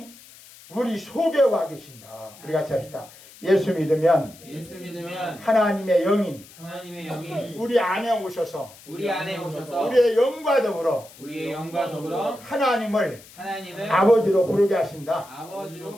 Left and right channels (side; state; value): left; noise; hiss, 21 dB below the sound